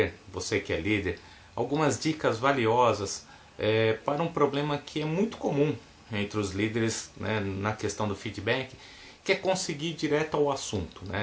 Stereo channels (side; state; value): both; identical; correlation 1.00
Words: você que é líder, algumas dicas valiosas para um problema que é muito comum entre os líderes, né, na questão do feedback, que é conseguir ir direto ao assunto,